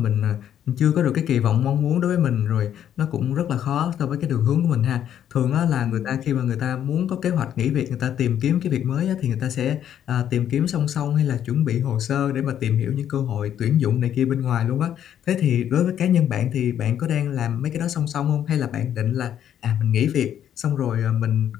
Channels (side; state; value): right; quieter; 10.1 dB